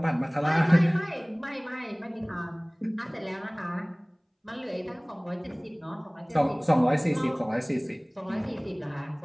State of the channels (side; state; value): both; identical; correlation 1.00